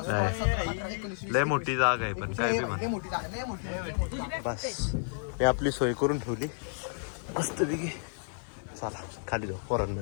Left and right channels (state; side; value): silent; right; 57 dB below the other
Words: लय मोठी जागा आहे, पण काय बी म्हणा बस मी आपली सोय करून ठेवली मस्त पैकी. चला खाली जाऊ